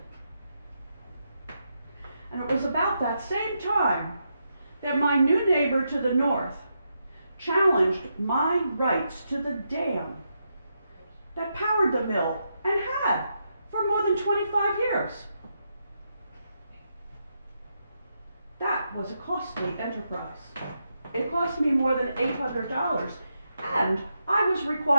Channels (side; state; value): both; inverted; correlation -0.83